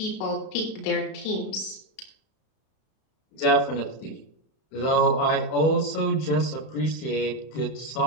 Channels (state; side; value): late; right; 31 ms